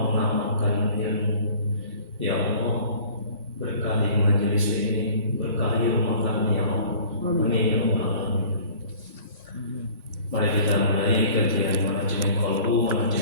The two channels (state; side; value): inverted; both; correlation -0.48